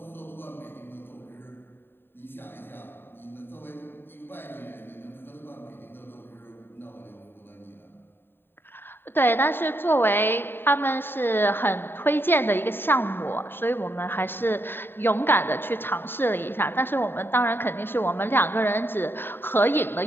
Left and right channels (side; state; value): right; late; 0.10 ms